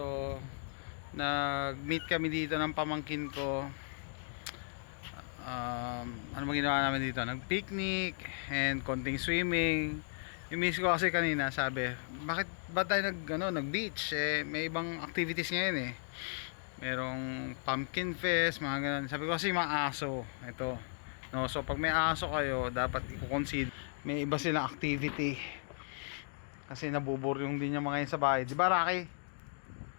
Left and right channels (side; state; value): right; silent; digital silence